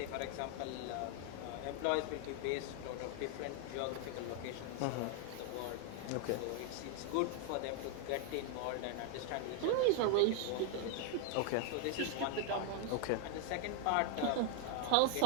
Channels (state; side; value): different; both; correlation 0.00